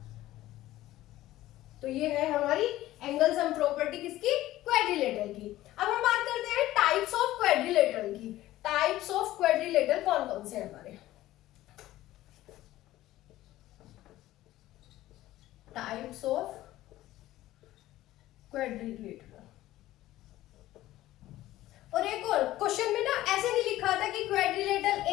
तो ये है हमारी एंगल सम प्रॉपर्टी किसकी? क्वाड्रिलेटरल की। अब हम बात करते हैं टाइप्स ऑफ क्वाड्रिलेटरल की। टाइप्स ऑफ क्वाड्रिलेटरल कौन कौन से हैं हमारे? Types of quadrilateral. और एक और क्वेश्चन में ना ऐसे नहीं लिखा था कि quadrilateral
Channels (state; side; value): quieter; right; 15.5 dB